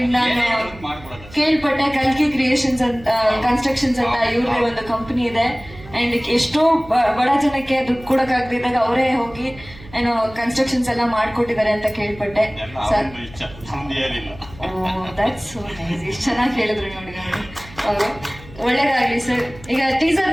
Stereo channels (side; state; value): right; noise; hum, 19 dB below the sound